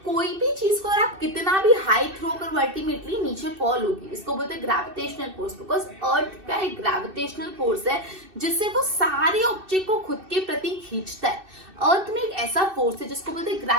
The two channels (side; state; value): left; late; 2.6 ms